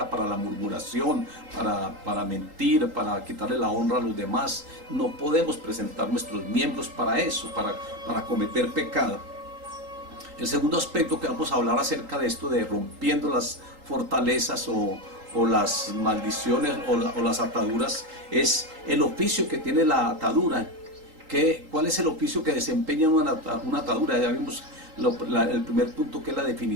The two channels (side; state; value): left; late; 3.8 ms